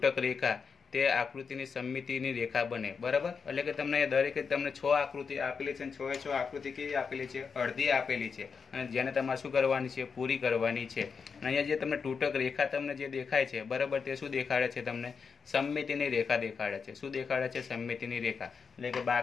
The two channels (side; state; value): right; quieter; 5.7 dB